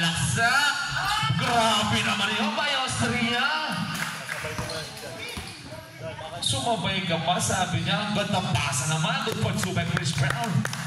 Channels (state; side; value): identical; both; correlation 1.00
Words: Grabe naman yun by Austria. Sumabay ka pa, sabi niya. Ganda pasa naman. Good for 2 by Chris Brown.